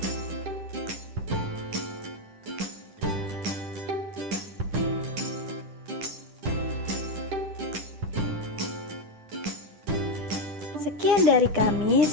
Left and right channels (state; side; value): late; left; 10 ms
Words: Sekian dari kami,